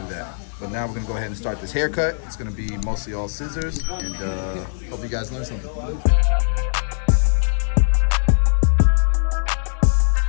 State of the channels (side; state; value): right; silent; digital silence